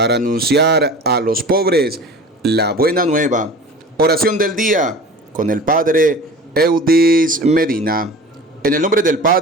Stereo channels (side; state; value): both; normal; correlation 0.38